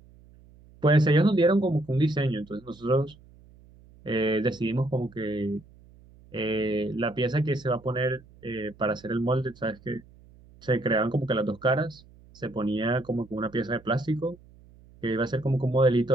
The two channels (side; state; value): right; noise; hum, 25 dB below the sound